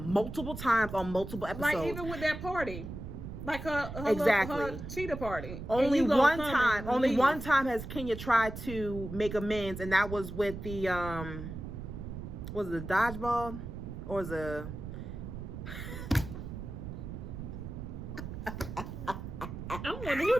times on multiple episodes. Like even with that party, like her cheetah party. Only one time has Kenya tried to make amends, and that was with the was it the dodgeball or the. I'm wondering who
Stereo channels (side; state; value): right; noise; rumble, 8 dB below the sound